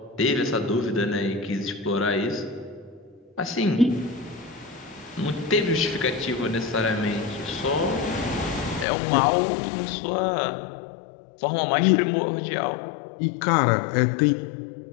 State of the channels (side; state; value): right; drops out; at 8.8 s